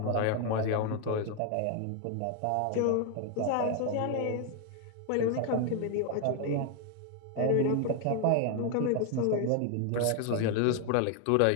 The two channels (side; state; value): both; different; correlation 0.01